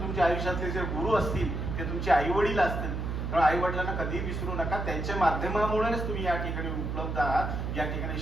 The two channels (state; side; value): noise; right; hum, 3 dB below the sound